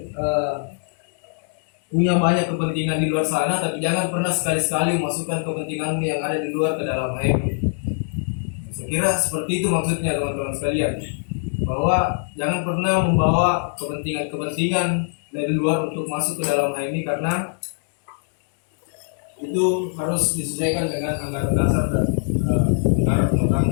punya banyak kepentingan di luar sana, tapi jangan pernah sekali-sekali memasukkan kepentinganmu yang ada di luar ke dalam HMI. Saya kira seperti itu maksudnya teman-teman sekalian, bahwa jangan pernah membawa kepentingan dari luar untuk masuk ke dalam HMI, karena itu harus disesuaikan dengan anggaran dasar dan anggaran rumah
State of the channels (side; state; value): right; silent; 64 dB below the other